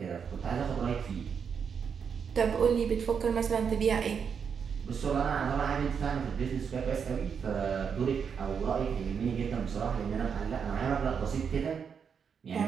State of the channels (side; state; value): left; quieter; 6.7 dB